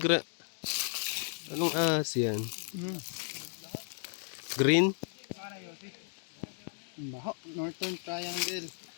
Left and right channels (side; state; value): right; silent; 55 dB below the other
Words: anong ahas yan? Green? Baho, Northern Triangle.